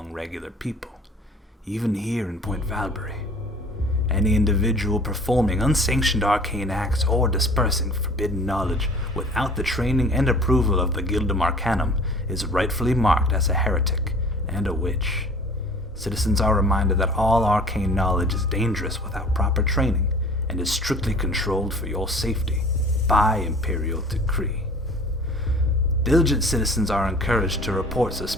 regular people, even here in Point Valbury. Any individual performing unsanctioned arcane acts or dispersing forbidden knowledge without the training and approval of the Gildum Arcanum is rightfully marked as a heretic and a witch. Citizens are reminded that all arcane knowledge is dangerous without proper training and is strictly controlled for your safety by Imperial decree. Diligent citizens are encouraged to report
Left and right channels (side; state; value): both; normal; correlation 0.47